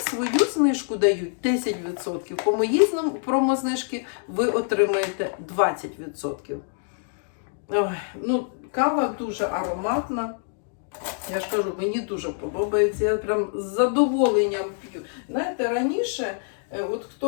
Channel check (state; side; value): silent; right; digital silence